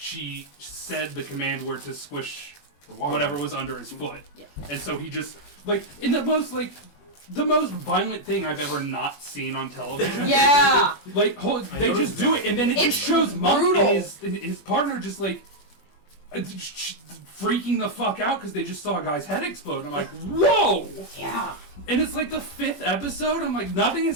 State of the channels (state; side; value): late; right; 21 ms